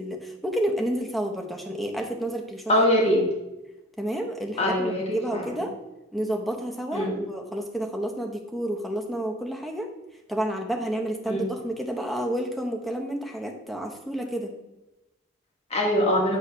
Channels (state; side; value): normal; both; correlation 0.45